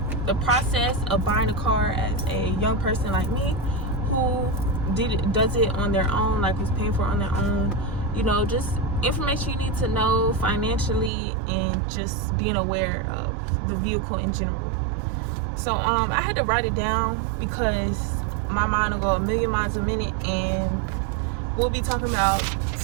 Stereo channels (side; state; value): left; drops out; at 11.1 s